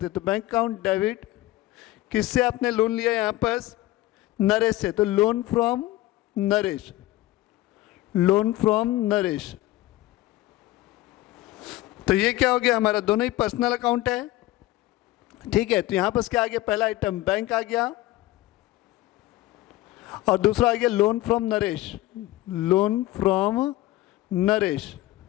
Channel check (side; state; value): right; quieter; 16.8 dB